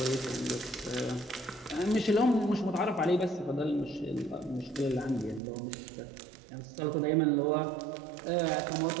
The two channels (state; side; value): drops out; left; at 5.4 s